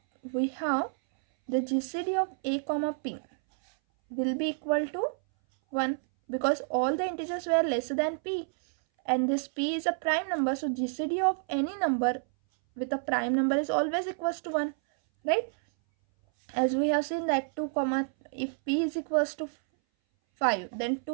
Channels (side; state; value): left; silent; 58 dB below the other